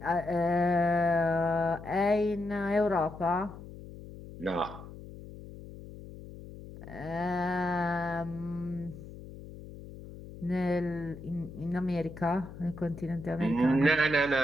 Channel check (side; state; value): left; noise; hum, 14 dB below the sound